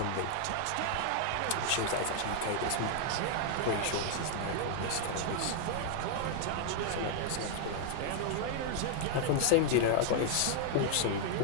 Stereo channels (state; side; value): different; both; correlation 0.00